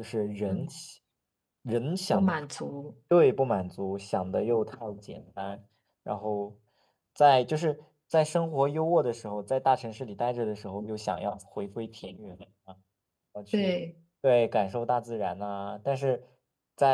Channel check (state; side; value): identical; both; correlation 1.00